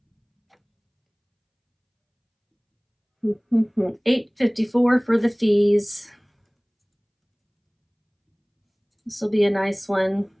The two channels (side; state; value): both; identical; correlation 1.00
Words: $8.54 for the fees. This will be a nice one.